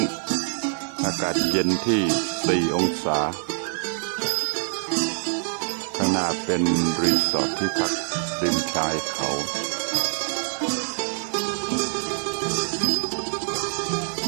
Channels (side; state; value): left; silent; digital silence